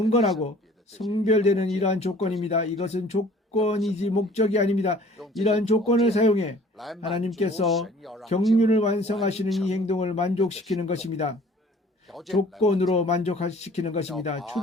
성별되는 이러한 조건입니다. 이것은 조건이지 목적이 아닙니다. 이러한 조건을 사용해 하나님께서 경륜을 완성하시는 이 행동을 만족시키는 것입니다. 조건으로 만족시키는 것입니다.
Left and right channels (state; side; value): normal; both; correlation 0.51